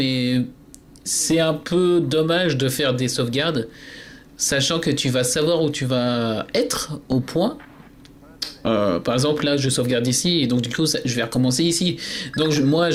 c'est un peu dommage de faire des sauvegardes, sachant que tu vas savoir où tu vas être au point. Par exemple, là, je sauvegarde ici, et donc du coup, je vais recommencer ici. Donc moi,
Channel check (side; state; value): both; identical; correlation 1.00